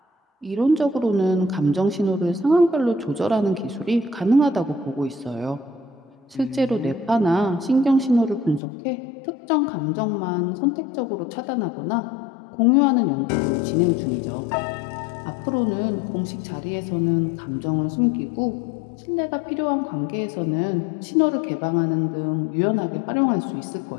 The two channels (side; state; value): right; drops out; at 8.6 s